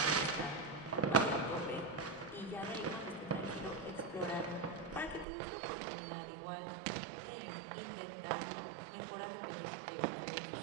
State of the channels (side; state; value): left; drops out; at 5.2 s